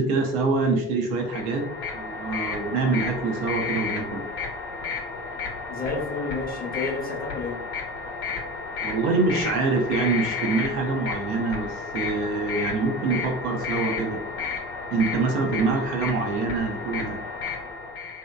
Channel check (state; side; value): normal; both; correlation 0.33